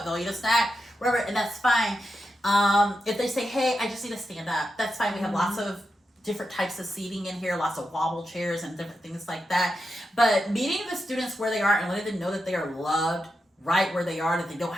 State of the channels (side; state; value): both; normal; correlation 0.87